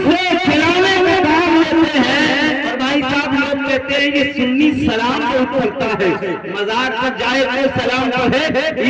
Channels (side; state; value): both; identical; correlation 1.00